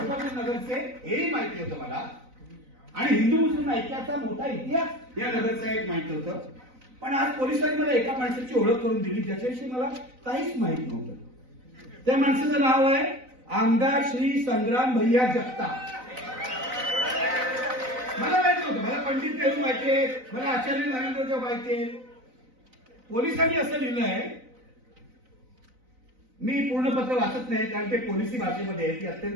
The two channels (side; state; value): left; late; 4.0 ms